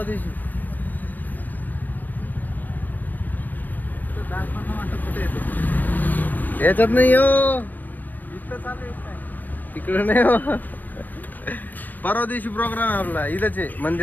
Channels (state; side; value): late; right; 0.088 ms